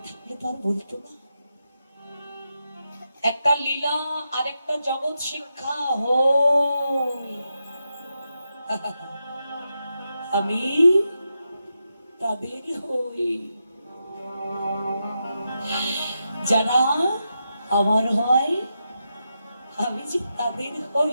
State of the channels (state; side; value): inverted; both; correlation -0.86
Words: থাকলে তো আর বলতো না। একটা লীলা আর একটা জগৎ শিক্ষা হই। আমি তাদের হই যারা আমার হয়, আমি যে তাদের হই।